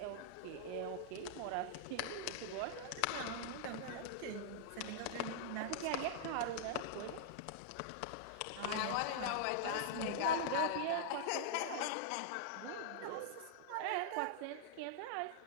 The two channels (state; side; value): different; both; correlation -0.01